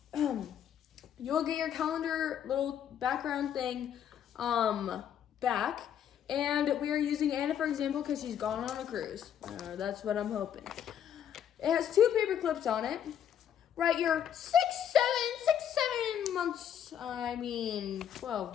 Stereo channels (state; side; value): quieter; right; 9.3 dB